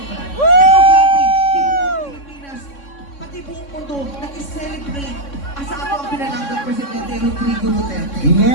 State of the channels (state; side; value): late; right; 3.6 ms